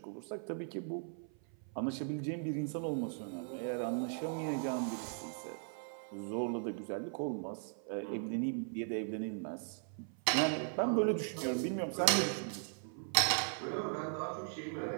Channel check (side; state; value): left; silent; 52 dB below the other